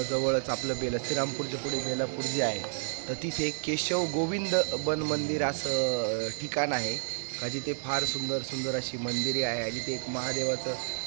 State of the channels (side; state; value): left; silent; digital silence